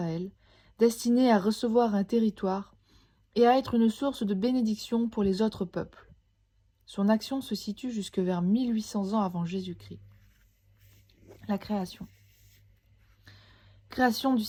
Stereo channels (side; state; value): both; identical; correlation 1.00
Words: destiné à recevoir un territoire et à être une source de bénédiction pour les autres peuples. Son action se situe jusque vers 1800 ans avant Jésus-Christ. La création. Création du